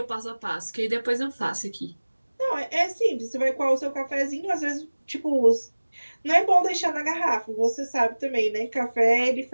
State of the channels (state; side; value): inverted; both; correlation -1.00